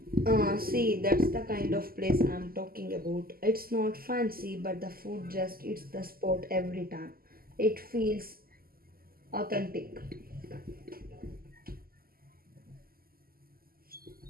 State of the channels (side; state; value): left; late; 0.43 ms